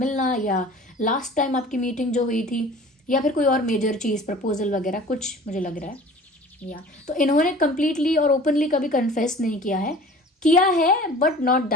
या लास्ट टाइम आपकी मीटिंग जो हुई थी, या फिर कोई और मेजर चीज़, प्रपोजल वगैरह कुछ मुझे लग रहा है। या तो इन्होंने कंप्लीटली और ओपनली कभी कन्फेस नहीं किया है बट नॉट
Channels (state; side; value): normal; both; correlation 0.44